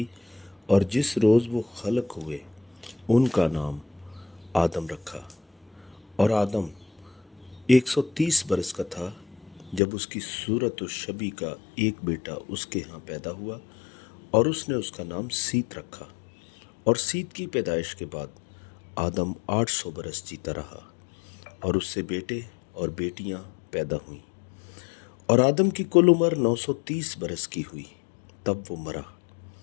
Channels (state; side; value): drops out; right; at 9.8 s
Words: اور جس روز وہ خلق ہوئے ان کا نام آدم رکھا۔ اور آدم 130 برس کا تھا جب اس کی صورت و شبیہ کا ایک بیٹا اس کے ہاں پیدا ہوا، اور اس نے اس کا نام سیت رکھا۔ اور سیت کی پیدائش کے بعد آدم 800 برس جیتا رہا، اور اس سے بیٹے اور بیٹیاں پیدا ہوئیں۔ اور آدم کی کل عمر 930 برس کی ہوئی، تب وہ مرا۔